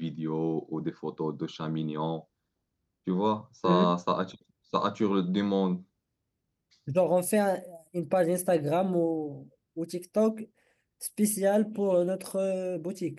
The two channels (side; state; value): both; identical; correlation 1.00